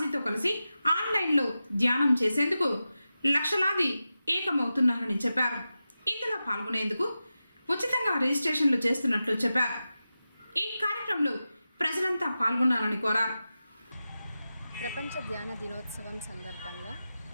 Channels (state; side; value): inverted; both; correlation -0.93